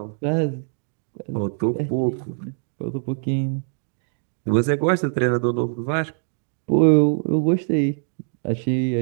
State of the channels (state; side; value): silent; left; digital silence